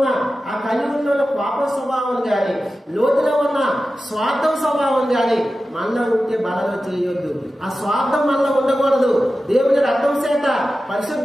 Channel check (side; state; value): both; normal; correlation 0.94